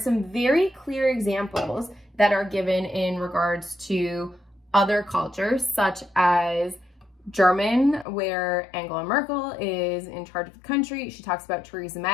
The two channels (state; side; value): drops out; right; at 8.1 s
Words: very clear examples that are given in regards to other cultures, such as German, where Angela Merkel is in charge of the country. She talks about Theresa